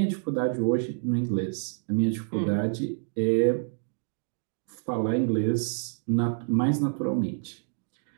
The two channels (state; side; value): silent; left; digital silence